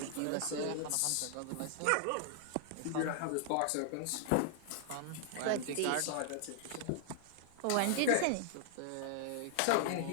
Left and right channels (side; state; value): both; different; correlation 0.00